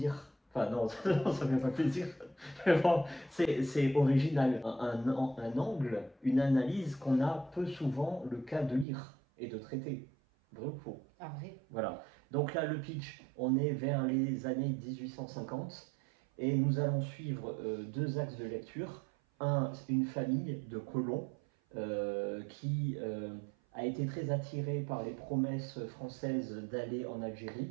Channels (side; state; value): left; drops out; at 8.8 s